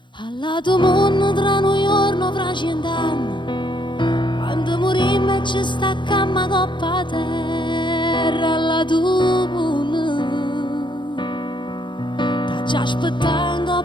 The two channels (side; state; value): right; late; 0.23 ms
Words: Allato mondo tra noi giorno fra 100 anni, quando morimmo e ci staccammo coppa a terra. Allato mondo t'ha già aspettato